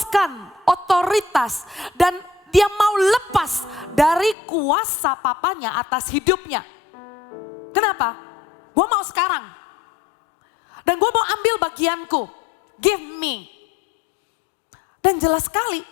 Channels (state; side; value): drops out; right; at 4.4 s